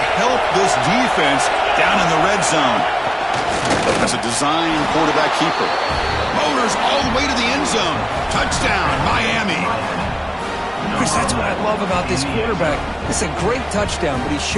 help this defense down in the red zone. That's a design quarterback keeper. Motors all the way to the end zone. Touchdown, Miami. Chris, that's what I love about this quarterback. It's a great touchdown, but he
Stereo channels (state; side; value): identical; both; correlation 1.00